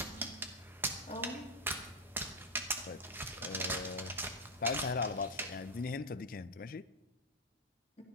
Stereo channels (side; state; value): both; normal; correlation 0.00